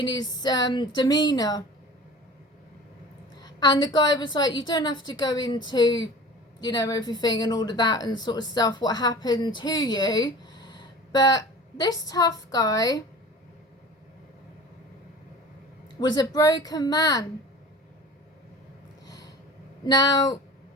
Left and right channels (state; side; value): normal; both; correlation 0.39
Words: his demeanor, and the guy was like, you don't have to go into, you know, everything and all of that and sort of stuff, what happened to you, but this tough guy was a broken man. Now,